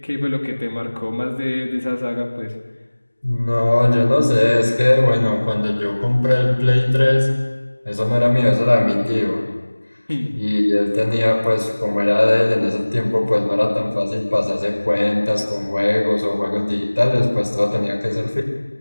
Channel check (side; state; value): both; inverted; correlation -1.00